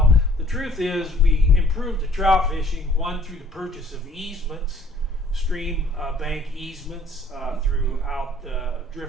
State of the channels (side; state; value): both; normal; correlation 0.58